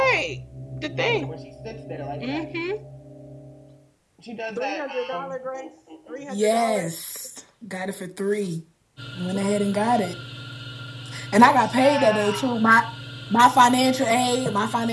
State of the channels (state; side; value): identical; both; correlation 1.00